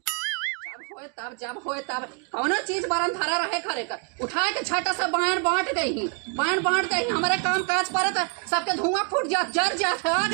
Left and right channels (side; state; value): left; quieter; 35.1 dB